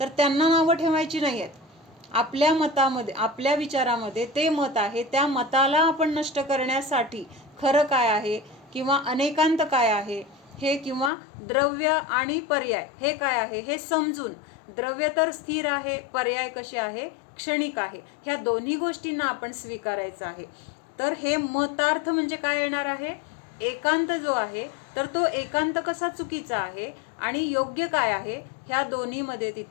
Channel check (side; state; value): right; drops out; at 11.1 s